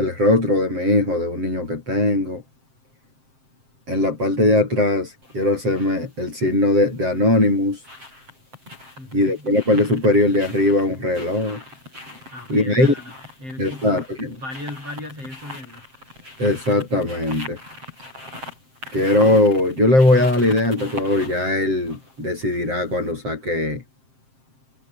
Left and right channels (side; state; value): left; late; 7.6 ms